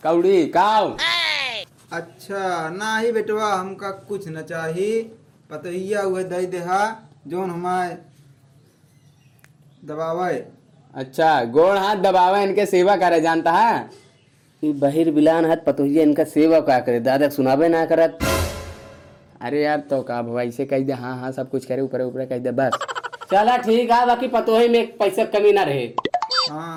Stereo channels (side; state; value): both; identical; correlation 1.00